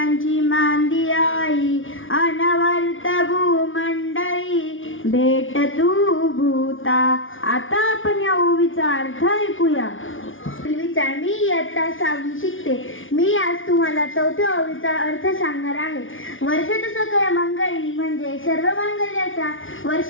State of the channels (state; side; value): late; right; 0.57 ms